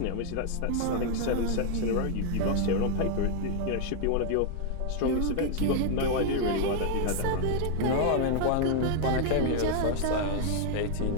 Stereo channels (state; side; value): different; both; correlation 0.00